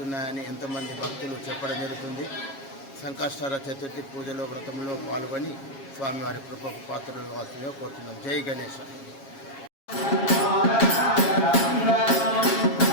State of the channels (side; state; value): right; late; 7.3 ms